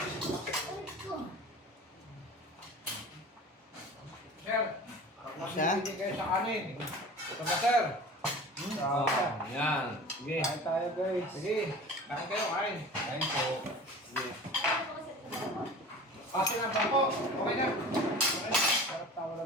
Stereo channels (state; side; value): normal; both; correlation 0.38